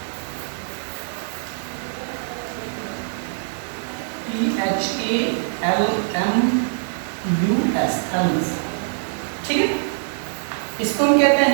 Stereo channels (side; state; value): left; silent; digital silence